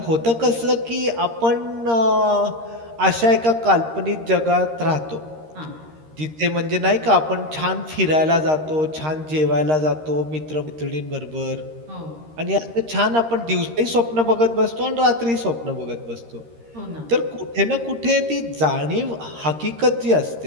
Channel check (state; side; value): late; left; 13 ms